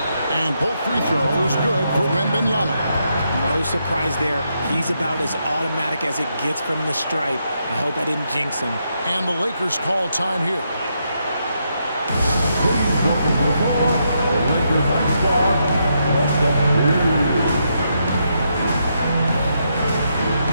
And both free throws good for Wembanyama. No surprise there. He's about as automatic as it gets from the stripe. I hope I didn't jinx him. And the Lakers call time here.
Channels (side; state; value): both; inverted; correlation -0.80